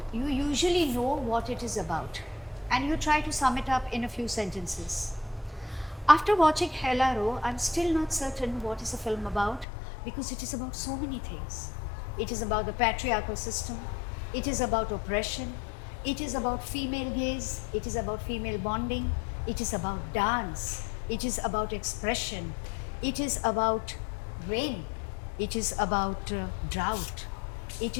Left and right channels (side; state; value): right; drops out; at 9.7 s